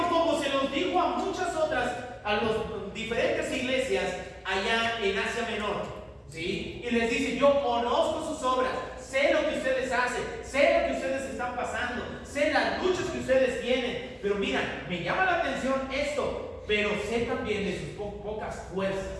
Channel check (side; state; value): both; identical; correlation 1.00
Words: como se los dijo a muchas otras, a las diferentes iglesias allá en Asia Menor, ¿sí? Y les dice, yo conozco sus obras, sé lo que ustedes hacen, sé lo que ustedes están pasando, sé las luchas que ustedes tienen, pero mira, me llama la atención esto, pero sé también de sus pocas